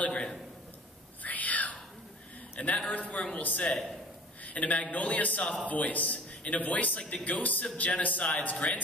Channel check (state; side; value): normal; both; correlation 0.45